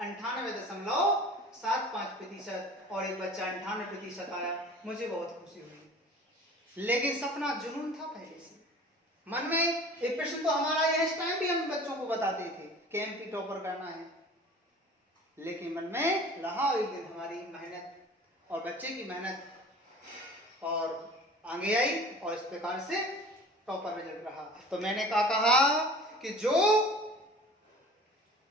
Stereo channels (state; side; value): normal; both; correlation 0.43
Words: 98.75% और एक बच्चा 98% आया, मुझे बहुत खुशी हुई। लेकिन सपना जुनून था पहले से मन में। एक प्रश्न तो हमारा इस टाइम भी हम बच्चों को बताते थे कि एमपी टॉपर करना है, लेकिन मन में रहा एक दिन हमारी मेहनत और बच्चे की मेहनत और आगे आई, और इस प्रकार से टॉपर रिजल्ट रहा। तो मैंने कहा कि जो